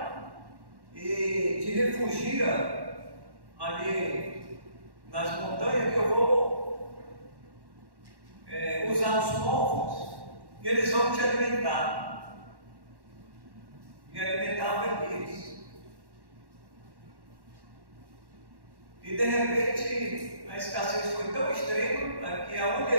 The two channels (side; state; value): left; late; 1.1 ms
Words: e te refugia ali nas montanhas, que eu vou usar os povos e eles vão te alimentar. E alimentavam Elias. E de repente a escassez foi tão extrema que aonde